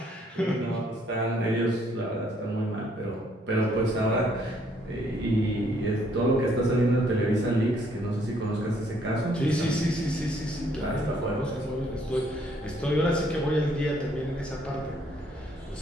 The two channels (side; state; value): both; normal; correlation 0.67